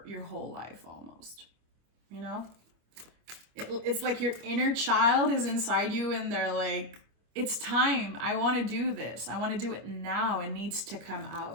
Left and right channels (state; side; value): late; left; 25 ms